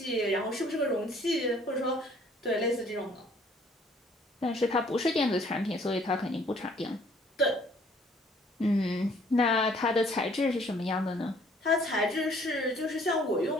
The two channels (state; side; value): normal; both; correlation 0.59